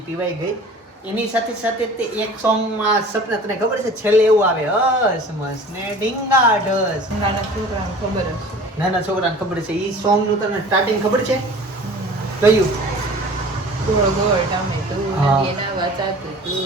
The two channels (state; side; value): normal; both; correlation 0.44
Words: પીવાઈ ગઈ એની સાથે સાથે તે એક સોંગમાં સપના તને ખબર છે છેલ્લે એવું આવે હસ મસ ને ડીંગા ઢસ નાના છોકરાને ખબર હશે. નાના છોકરાને ખબર છે ઈ સોંગ નું તને સ્ટાર્ટિંગ ખબર છે કયું ગોળ ગોળ ટામેટું, હા. એના વાચાતું